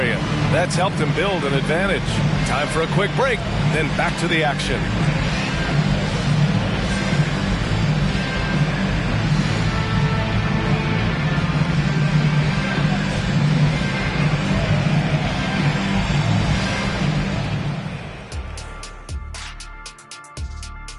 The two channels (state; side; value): identical; both; correlation 1.00